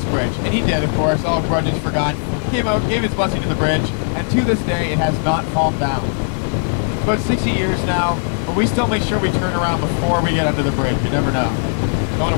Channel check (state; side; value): silent; right; digital silence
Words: bridge. And he did, of course, all grudges forgot. He came out, gave his blessing to the bridge, and to this day, it has not fallen down. It's about 60 years now, but we still make sure we turn around before we get under the bridge. You never know. Don't want